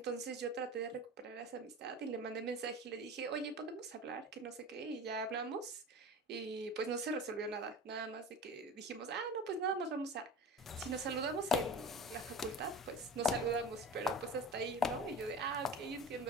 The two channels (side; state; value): both; normal; correlation 0.34